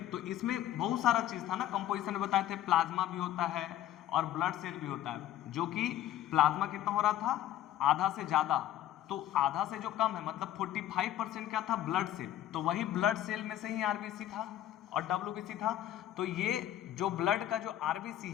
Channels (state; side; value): quieter; right; 12.6 dB